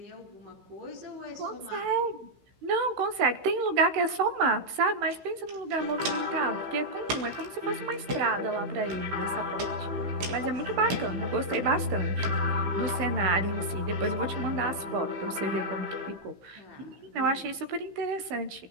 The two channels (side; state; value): left; late; 15 ms